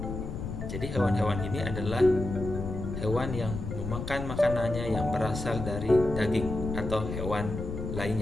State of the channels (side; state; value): left; noise; rumble, 6 dB below the sound